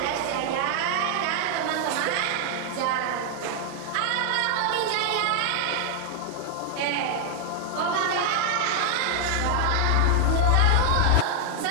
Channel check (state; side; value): different; both; correlation 0.00